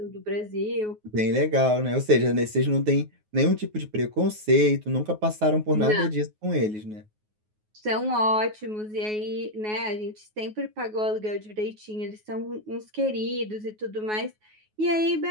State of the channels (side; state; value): left; late; 9.4 ms